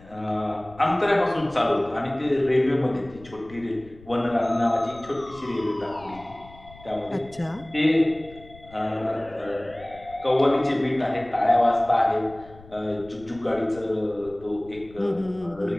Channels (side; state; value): left; noise; rumble, 21 dB below the sound